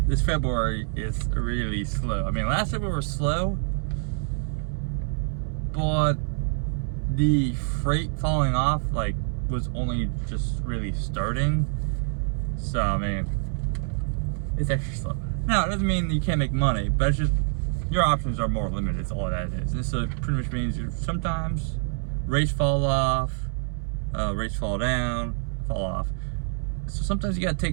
this February is really slow. I mean, last February was slow, but the freight falling off, was only just really starting. So, I mean, it's extra slow. Now, it doesn't mean you can't make money, but it's just, your options are more limited, is all that is. And so, it pretty much means sometimes rates fall off, rates fall down, fall off. So sometimes you gotta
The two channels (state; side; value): silent; left; digital silence